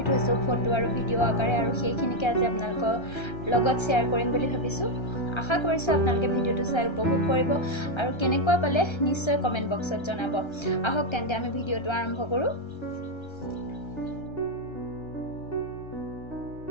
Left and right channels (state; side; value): late; right; 1.3 ms